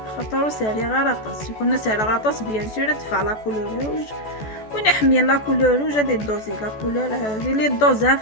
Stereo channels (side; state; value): right; late; 14 ms